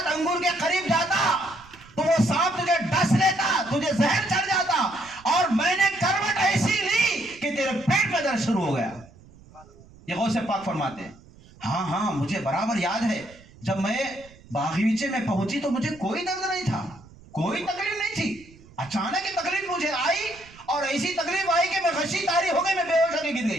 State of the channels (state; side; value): noise; right; rumble, 24 dB below the sound